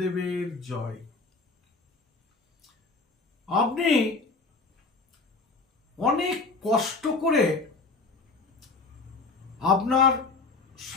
জয়। আপনি অনেক কষ্ট করে আপনার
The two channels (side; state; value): right; quieter; 3.8 dB